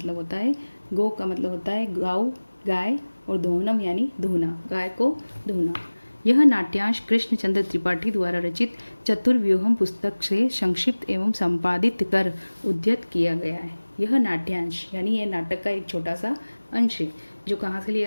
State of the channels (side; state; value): both; inverted; correlation -1.00